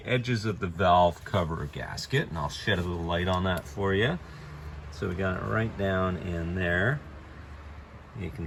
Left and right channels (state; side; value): identical; both; correlation 1.00